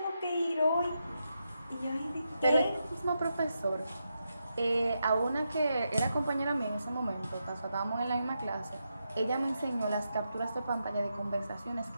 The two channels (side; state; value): both; inverted; correlation -0.85